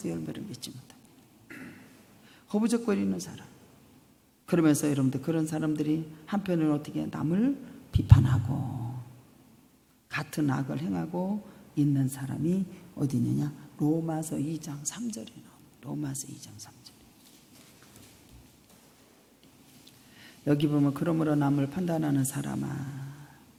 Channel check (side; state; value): both; identical; correlation 1.00